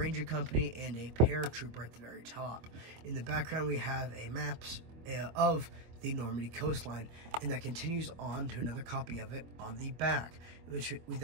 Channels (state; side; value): late; left; 25 ms